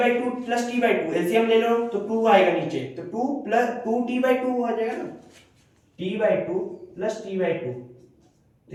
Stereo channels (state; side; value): identical; both; correlation 1.00